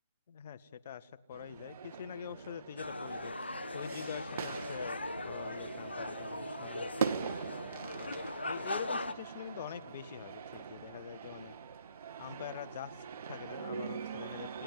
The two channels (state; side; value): inverted; both; correlation -0.67